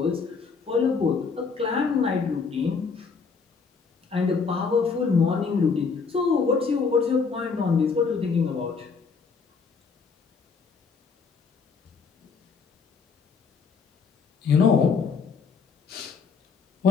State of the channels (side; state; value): right; quieter; 5.2 dB